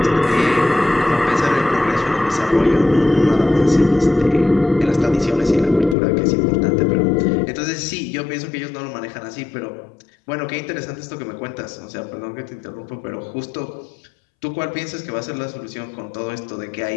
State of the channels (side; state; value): right; drops out; at 6.0 s